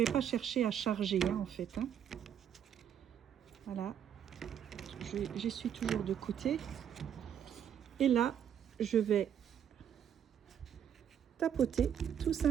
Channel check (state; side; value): quieter; left; 9.0 dB